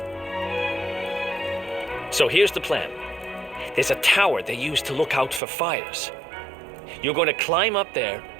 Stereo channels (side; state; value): left; drops out; at 5.4 s